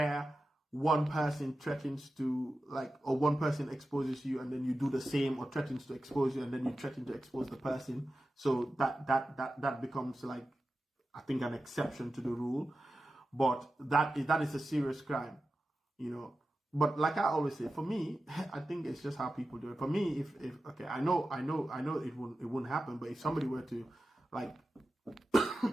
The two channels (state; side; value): normal; both; correlation 0.93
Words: one person threatens to or one person exposes you and then you do the same, or threatens to expose you and then you threaten to expose the person. So that becomes I think an exception to the rule. But that is a serious crime, But like I always say, for me, I think it's just how people do it. For me, if okay, I know it wouldn't happen, but if somebody were to